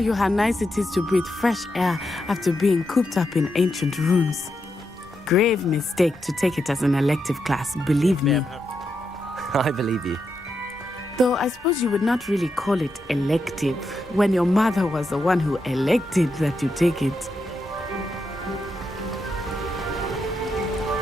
you how nice it is to breathe fresh air after being cooped up in ancient ruins. Grave mistake to take it as an elective class, believe me. I believe you. Though I suppose you would not really call it elective when your mother was the one who elected that you take it.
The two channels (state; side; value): normal; both; correlation 0.84